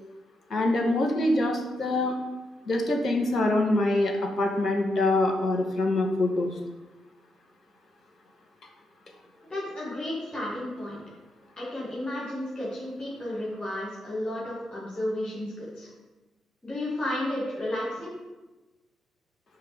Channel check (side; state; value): both; normal; correlation 0.82